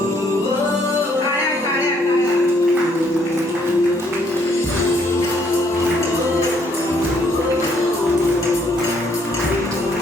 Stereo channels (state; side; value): normal; both; correlation 0.68